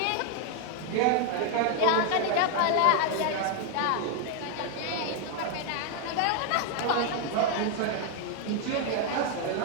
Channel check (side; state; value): both; different; correlation 0.01